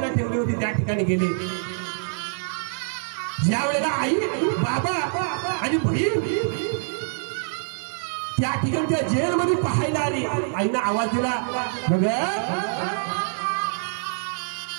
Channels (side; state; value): left; silent; 57 dB below the other